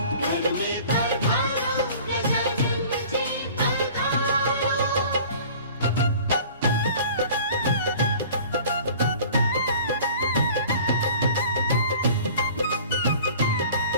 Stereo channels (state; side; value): inverted; both; correlation -0.46